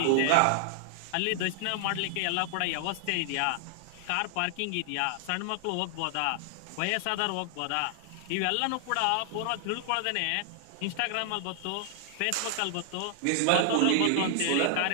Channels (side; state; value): both; different; correlation 0.00